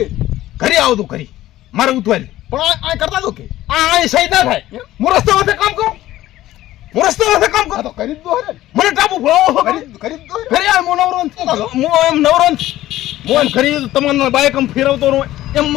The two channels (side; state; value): right; quieter; 14.9 dB